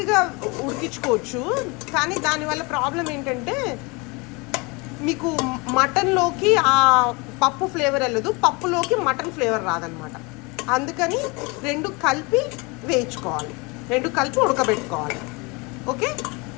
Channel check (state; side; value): quieter; right; 27.8 dB